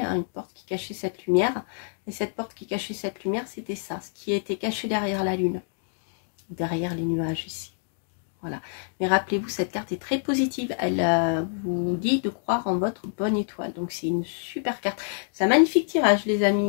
hein, une porte qui cachait cette lumière. Et cette porte qui cachait cette lumière, c'était ça, ce qui était caché derrière la lune, derrière les nuages ici. Voilà. Mais rappelez-vous, cette carte est très positive. Elle vous dit de croire en votre bonne étoile. Donc, c'est une super carte. C'est un magnifique tirage, les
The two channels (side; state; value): right; silent; digital silence